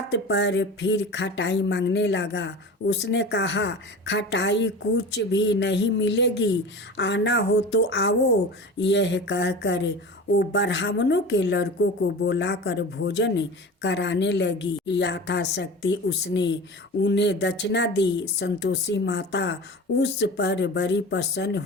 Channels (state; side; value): normal; both; correlation 0.33